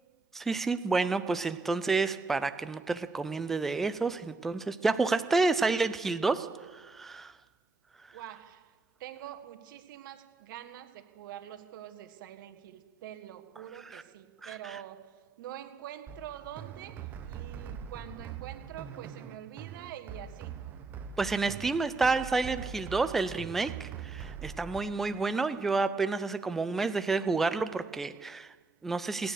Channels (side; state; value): left; quieter; 3.7 dB